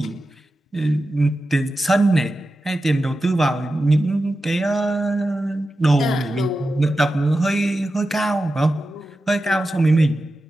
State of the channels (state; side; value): normal; both; correlation 0.92